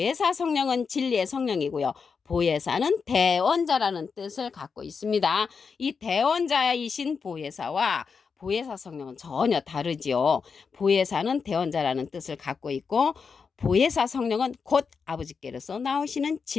성령은 진리의 성령이고요. 보혜사는 대원자라는 뜻을 갖고 있습니다. 이 대원자이신 보혜사와 보혜사 성령은 전혀 다르지요. 보혜사는 대원자라는 뜻을 갖고 있고 보혜사 성령은 곧 아버지께로서 나오시는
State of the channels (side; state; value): right; quieter; 5.5 dB